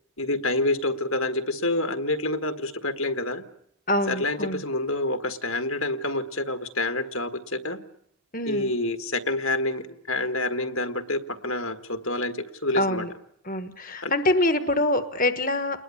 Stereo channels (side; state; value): both; normal; correlation -0.12